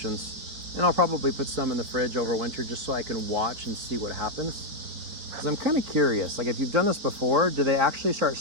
And I'll probably put some in the fridge over winter just so I can watch and see what happens. Because I'm kind of curious, like if you've done this before, do they actually start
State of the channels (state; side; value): late; left; 4.2 ms